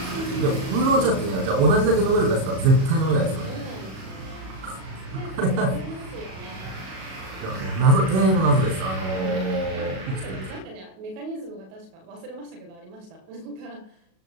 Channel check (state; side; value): late; left; 37 ms